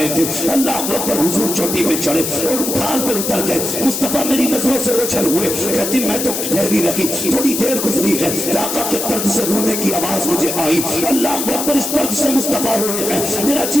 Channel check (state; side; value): noise; left; hiss, 3 dB below the sound